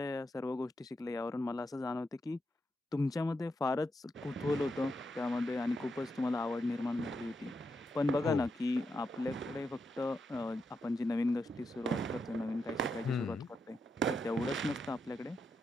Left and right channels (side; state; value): both; normal; correlation 0.84